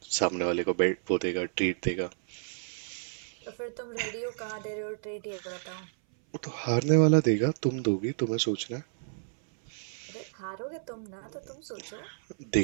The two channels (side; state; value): left; silent; 57 dB below the other